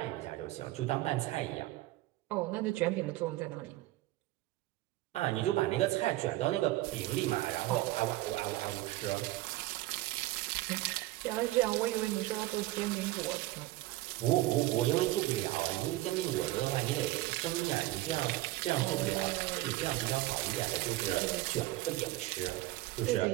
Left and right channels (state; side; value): quieter; left; 17.5 dB